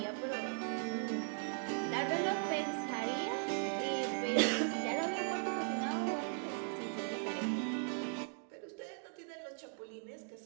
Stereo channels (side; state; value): left; silent; 52 dB below the other